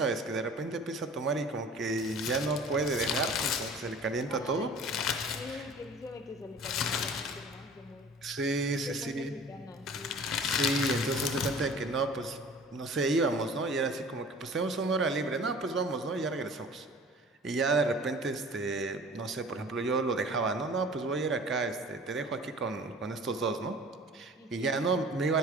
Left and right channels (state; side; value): normal; both; correlation 0.45